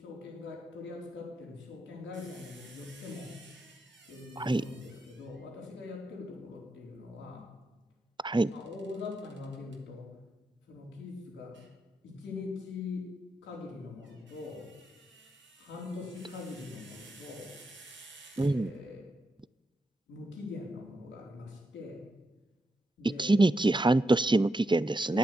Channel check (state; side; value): normal; both; correlation 0.84